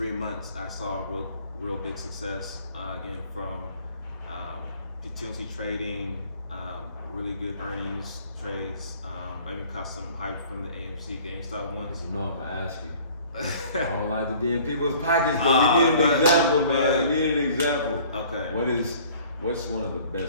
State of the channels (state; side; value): inverted; both; correlation -0.51